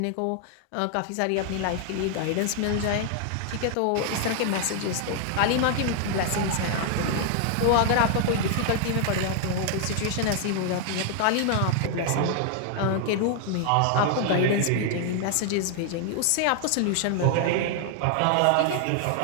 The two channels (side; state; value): both; different; correlation 0.00